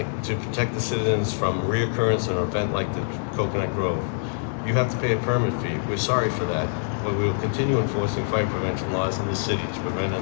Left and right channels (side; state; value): right; silent; 62 dB below the other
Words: to protect the citizens from reoccurrence in an event like the Coconut Grove. You have to pay a permit fee. We're sorry for that, but we will continue enforcing fire prevention laws in the city to prevent